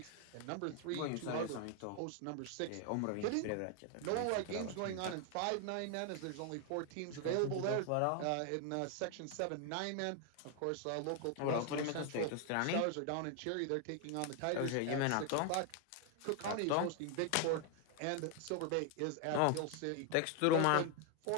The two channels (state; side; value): different; both; correlation 0.00